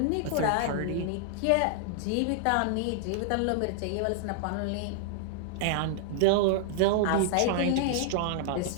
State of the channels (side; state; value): both; different; correlation -0.01